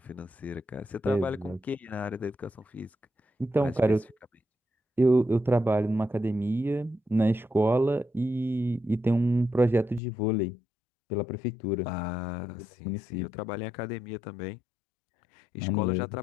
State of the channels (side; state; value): right; drops out; at 10.0 s